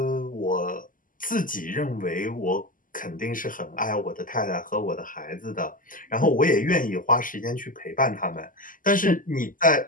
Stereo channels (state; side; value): late; right; 0.39 ms